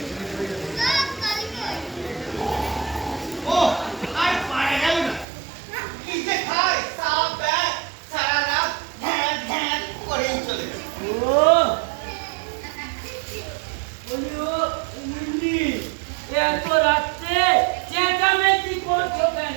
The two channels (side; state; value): left; drops out; at 5.2 s